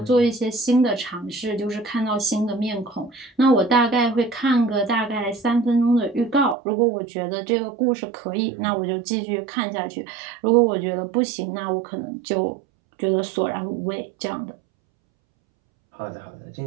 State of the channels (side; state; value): left; drops out; at 6.6 s